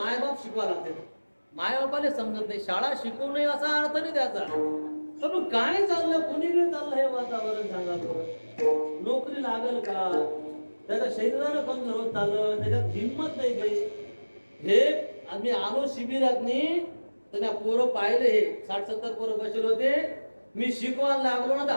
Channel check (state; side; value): inverted; both; correlation -1.00